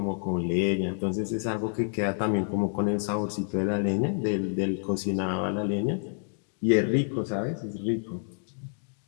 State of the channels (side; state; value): right; silent; digital silence